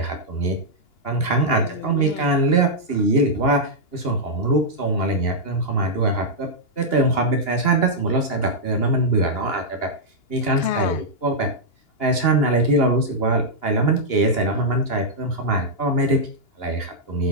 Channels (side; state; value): right; late; 2.9 ms